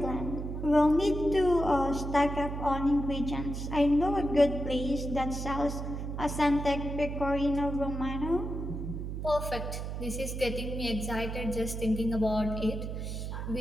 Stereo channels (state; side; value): noise; right; hum, 5 dB below the sound